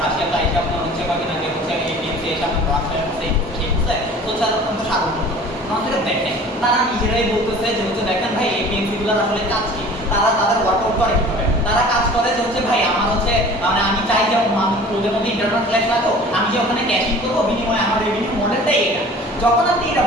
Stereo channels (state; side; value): normal; both; correlation 0.45